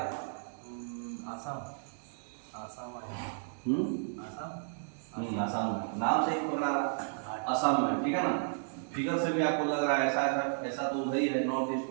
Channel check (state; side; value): silent; left; 56 dB below the other